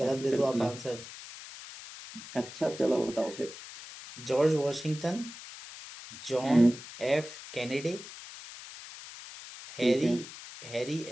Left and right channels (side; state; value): left; noise; hiss, 14 dB below the sound